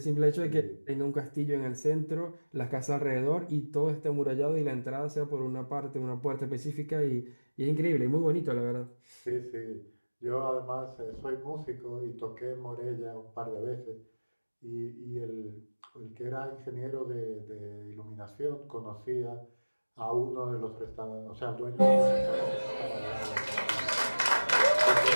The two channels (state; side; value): inverted; both; correlation -1.00